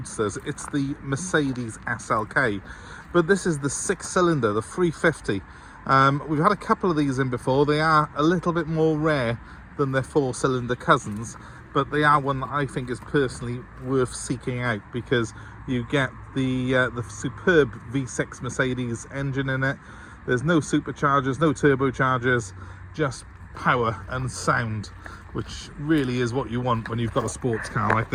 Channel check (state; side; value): identical; both; correlation 1.00